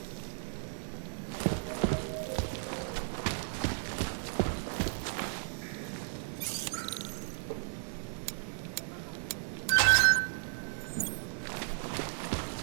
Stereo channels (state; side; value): silent; left; digital silence